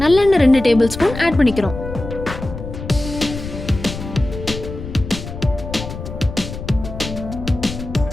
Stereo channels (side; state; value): left; noise; rumble, 9 dB below the sound